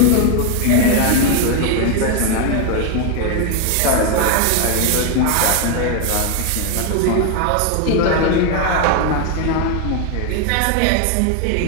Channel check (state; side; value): different; both; correlation 0.01